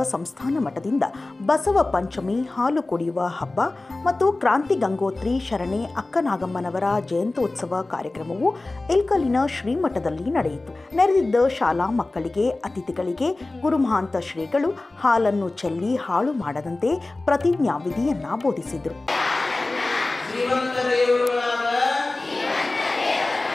ಸಂಸ್ಥಾನ ಮಠದಿಂದ ಬಸವ ಪಂಚಮಿ ಹಾಲು ಕುಡಿಯುವ ಹಬ್ಬ ಮತ್ತು ಕ್ರಾಂತಿ ಗಂಗೋತ್ರಿ ಶರಣೆ ಅಕ್ಕನಾಗಮ್ಮನವರ ಜಯಂತ್ಯೋತ್ಸವ ಕಾರ್ಯಕ್ರಮವು ಇಲ್ಕಲಿನ ಶ್ರೀಮಠದಲ್ಲಿ ನಡೆಯಿತು. ನೆರೆದಿದ್ದ ಶಾಲಾ ಮಕ್ಕಳಿಗೆ, ಅತಿಥಿಗಳಿಗೆ ಗುರುಮಹಾಂತ ಶ್ರೀಗಳು ಹಾಲನ್ನು ಚೆಲ್ಲಿ ಹಾಳು ಮಾಡದಂತೆ ಪ್ರತಿಜ್ಞಾವಿಧಿಯನ್ನ ಬೋಧಿಸಿದರು.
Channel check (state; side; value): quieter; right; 3.0 dB